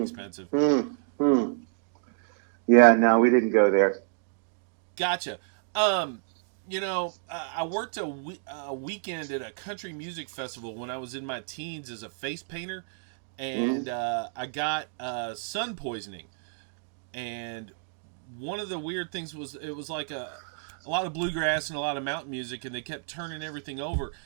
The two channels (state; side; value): silent; left; digital silence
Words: expensive. mm. Yeah, no, we didn't go there. Gotcha. I worked a weekend at a country music festival when I was in my teens as a face painter, Mm, and I got sun poisoning. And one of the weird things was it was like a lot of bluegrass and a lot of mountain music, and they kept turning everything over.